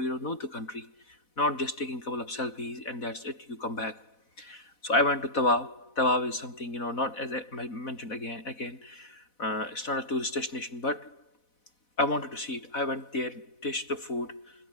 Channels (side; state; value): right; late; 4.1 ms